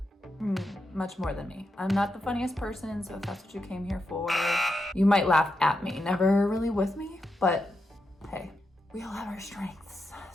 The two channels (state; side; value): normal; both; correlation 0.86